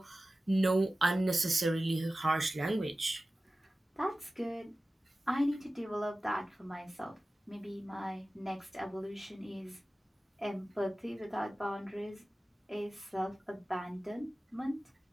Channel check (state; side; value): normal; both; correlation 0.96